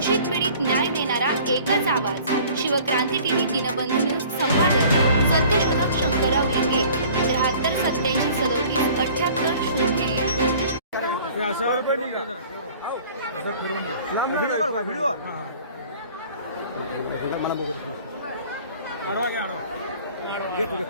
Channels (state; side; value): inverted; both; correlation -0.49